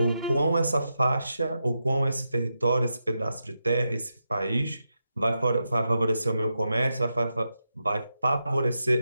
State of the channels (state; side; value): inverted; both; correlation -0.87